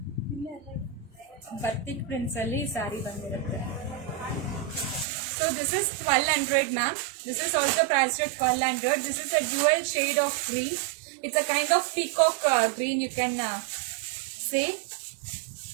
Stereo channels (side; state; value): left; drops out; at 5.1 s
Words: ಅಲ್ಲಿ saree ಬಂದಿರುತ್ತೆ. So this is 1200, ma'am. This is also priced at 1200. This is a dual shade of green. It's a kind of peacock green, you can say.